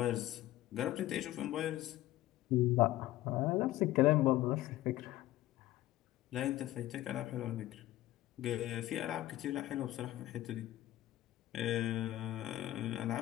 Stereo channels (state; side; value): quieter; right; 15.3 dB